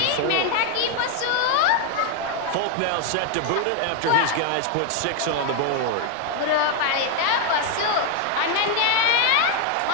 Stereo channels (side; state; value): both; different; correlation 0.01